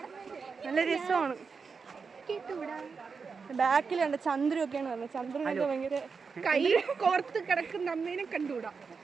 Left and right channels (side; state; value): left; quieter; 5.2 dB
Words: നല്ല രസമാണ്. ബാക്കിൽ കണ്ട ചന്ദ്രൊക്കെയാണ് പറഞ്ഞത്. ചന്ദ്രനൊക്കെ ഭയങ്കര കൈ കോർത്ത് കിടക്കുന്ന അമ്മേനെ കണ്ടുകൂടാ.